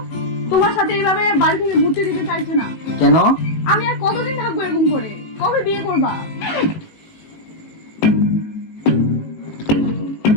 তোমার সাথে এইভাবে বাড়ি থেকে ঘুরতে দিতে চাইছে না। কেন? আমি আর কতদিন থাকবো এরকম করে? কবে বিয়ে করবা?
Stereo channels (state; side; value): late; right; 18 ms